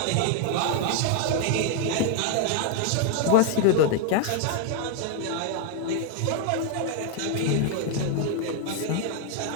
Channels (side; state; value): both; different; correlation 0.00